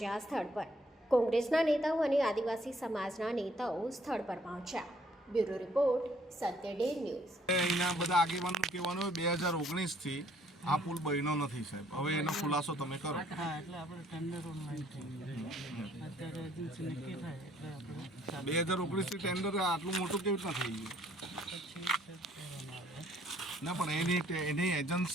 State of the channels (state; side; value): normal; both; correlation 0.63